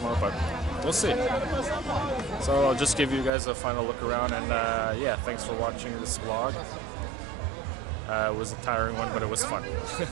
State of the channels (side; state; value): left; drops out; at 3.3 s